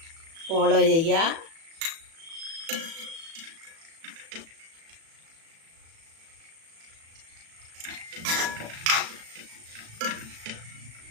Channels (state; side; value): late; left; 36 ms